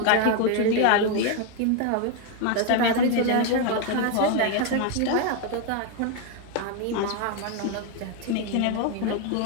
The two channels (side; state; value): both; different; correlation 0.01